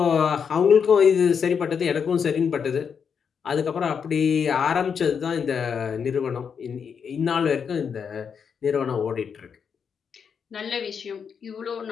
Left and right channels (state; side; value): quieter; right; 6.7 dB